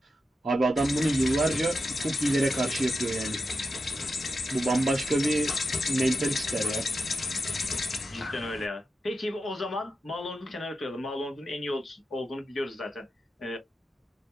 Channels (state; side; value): normal; both; correlation 0.89